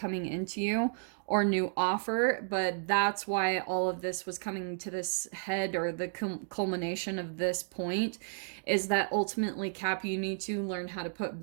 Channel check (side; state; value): left; silent; digital silence